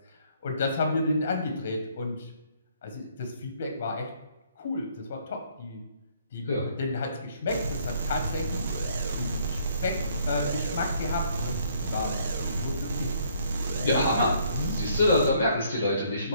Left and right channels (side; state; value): both; inverted; correlation -0.65